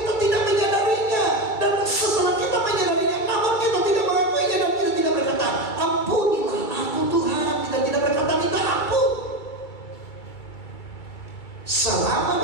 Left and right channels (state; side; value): late; right; 2.3 ms